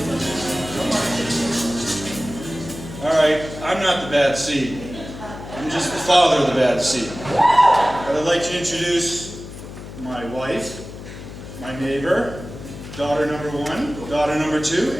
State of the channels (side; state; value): left; noise; hum, 12 dB below the sound